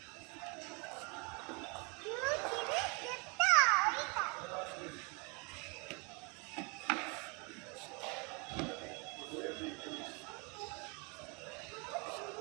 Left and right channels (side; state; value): left; quieter; 31.7 dB